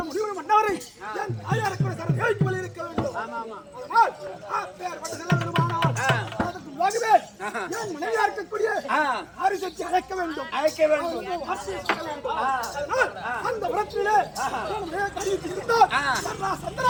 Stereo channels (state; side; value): identical; both; correlation 1.00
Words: முடிவு மன்னவரை தாயாருக்கு சரஜாவிக்கு மேல் இருக்க வேண்டும். மனைவியா இருக்கக்கூடிய அரிசத்தை அழைக்க வேண்டும். அந்த உரத்திலே